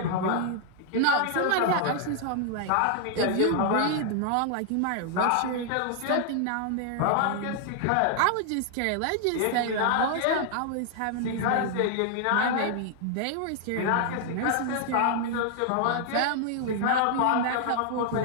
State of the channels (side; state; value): both; different; correlation 0.00